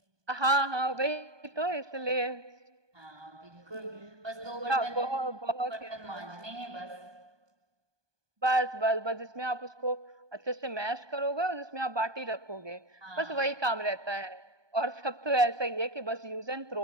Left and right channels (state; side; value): late; left; 1.2 ms